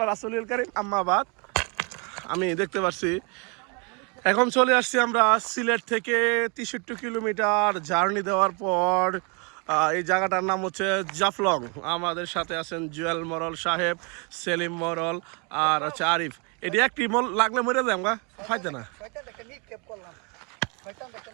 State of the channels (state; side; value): quieter; left; 33.6 dB